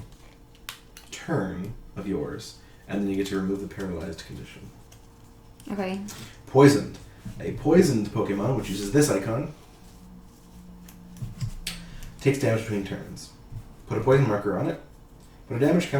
turn of yours, and then you get to remove the paralyzed condition. Okay. Poisoned. A poisoned Pokemon, which uses this icon, takes damage between turns. Put a poison marker on it. Put a damage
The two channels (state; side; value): identical; both; correlation 1.00